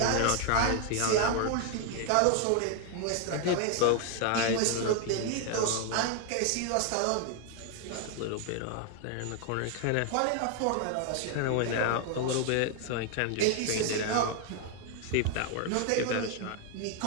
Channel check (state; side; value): different; both; correlation 0.00